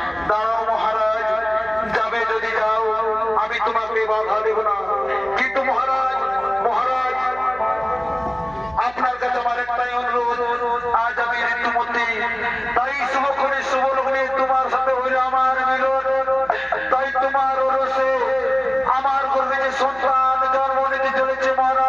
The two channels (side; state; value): right; noise; hum, 23 dB below the sound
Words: দাঁড়াও মহারাজ, যাবে যদি যাও, আমি তোমাকে বাধা দেব না। কিন্তু মহারাজ, মহারাজ, আপনার কাছে আমার একটাই অনুরোধ, আজ আমি ঋতুমতী, তাই শুভক্ষণে শুভ লগ্নে তোমার সাথে হইলে আমার মিলন, তাই তোমার ওরসে আমার গর্ভে যে সন্তান জন্ম নিতে চলেছে